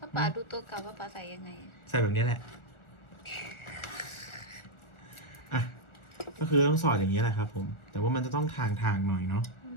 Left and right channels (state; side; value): late; right; 1.4 ms